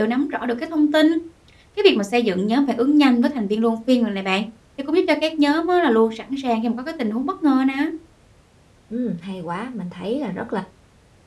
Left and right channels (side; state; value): both; identical; correlation 1.00